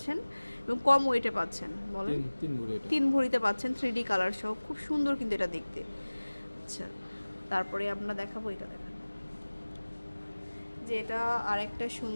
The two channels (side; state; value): both; inverted; correlation -1.00